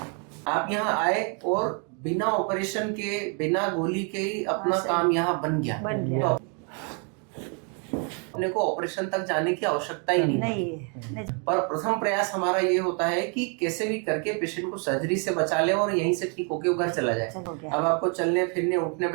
आप यहाँ आए और बिना ऑपरेशन के, बिना गोली के ही अपना हाँ, सही। काम यहाँ बन गया। गया। तो अपने को ऑपरेशन तक जाने की आवश्यकता ही नहीं नहीं। पर प्रथम प्रयास हमारा ये होता है कि कैसे भी करके पेशेंट को सर्जरी से बचा ले और यहीं से ठीक होके घर चला जाए। अब आपको चलने फिरने उठने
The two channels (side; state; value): left; quieter; 37.9 dB